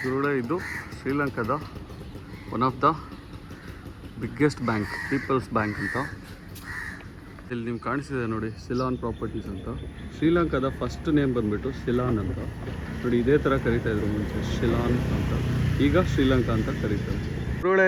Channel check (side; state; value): both; identical; correlation 1.00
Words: ಗುರುಳೆ ಇದು ಶ್ರೀಲಂಕಾದ one of the biggest bank, people's bank ಅಂತ. ಇಲ್ಲಿ ನಿಮ್ಗೆ ಕಾಣಿಸಿದೆ ನೋಡಿ, ಸಿಲಾನ್ ಪ್ರಾಪರ್ಟೀಸ್ ಅಂತ. ಶ್ರೀಲಂಕಾದ ಫಸ್ಟ್ ನೇಮ್ ಬಂದುಬಿಟ್ಟು ಸಿಲಾನ್ ಅಂತ ನೋಡಿ. ಇದೇ ಥರ ಕರೀತಾಯಿದ್ರು ಮುಂಚೆ, ಶಿಲಾನ್ ಅಂತ. ಈಗ ಶ್ರೀಲಂಕಾ ಅಂತ ಕರೀತಾರೆ.